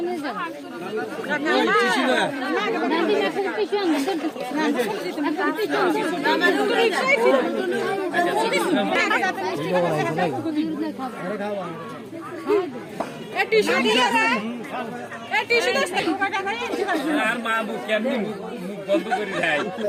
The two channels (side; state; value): both; identical; correlation 1.00